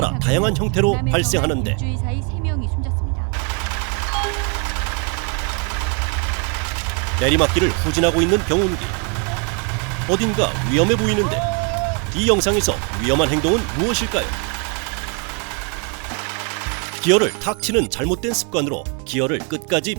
다양한 형태로 발생하는데 일주일 사이 3명이 숨졌습니다. 내리막길을 후진하고 있는 경운기. 어딘가 위험해 보이는데 이 영상에서 위험한 행동은 무엇일까요? 기어를 탁 치는 잘못된 습관으로 기어를 끝까지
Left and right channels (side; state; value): left; quieter; 36.6 dB